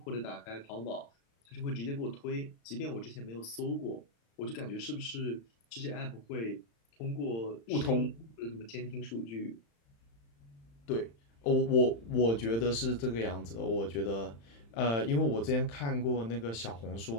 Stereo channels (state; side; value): late; right; 35 ms